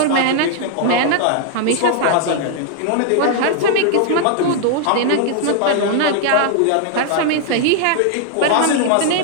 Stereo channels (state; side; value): different; both; correlation 0.00